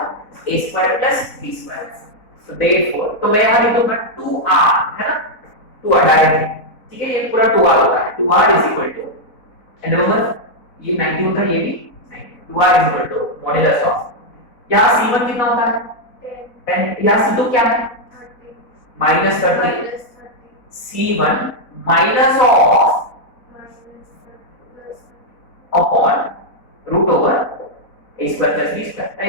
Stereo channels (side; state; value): right; late; 4.0 ms